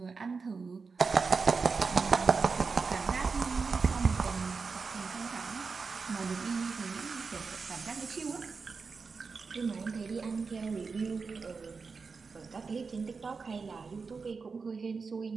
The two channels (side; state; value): left; quieter; 4.8 dB